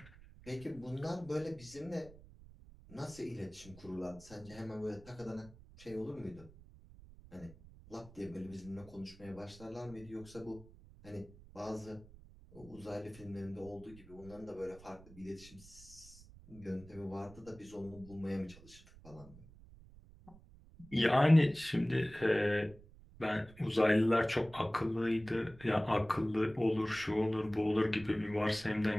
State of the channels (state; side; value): noise; right; rumble, 21 dB below the sound